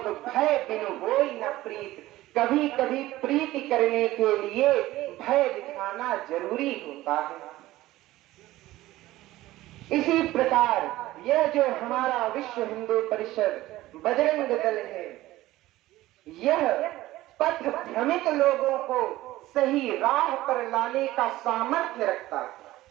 भय बिन होई न प्रीत। कभी कभी प्रीति करने के लिए भय दिखाना जरूरी होता है। इसी प्रकार यह जो हमारा विश्व हिंदू परिषद बजरंग दल है, यह पथ भ्रमित लोगों को सही राह पर लाने का सामर्थ्य रखता है।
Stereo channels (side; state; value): left; quieter; 16.6 dB